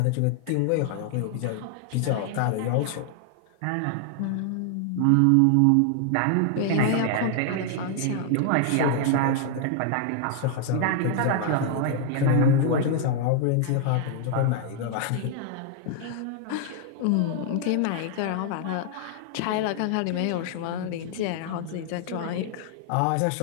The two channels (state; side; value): different; both; correlation 0.00